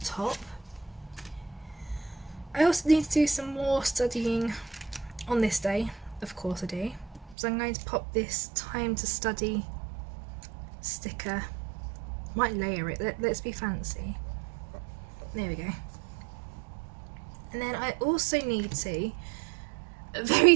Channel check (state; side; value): drops out; left; at 7.4 s